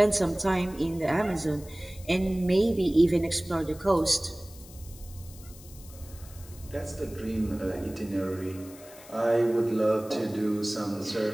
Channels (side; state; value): left; noise; hiss, 20 dB below the sound